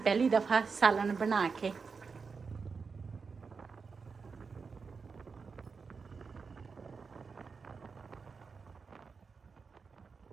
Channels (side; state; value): left; quieter; 5.1 dB